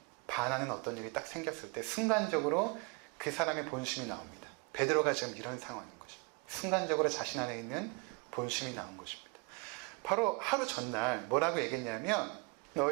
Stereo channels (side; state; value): left; quieter; 30.6 dB